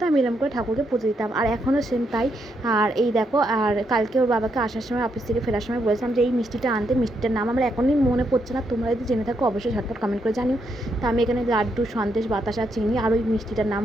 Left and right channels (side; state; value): both; normal; correlation 0.78